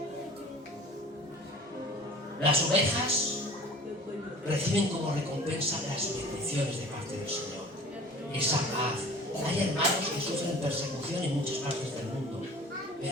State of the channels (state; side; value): normal; both; correlation 0.44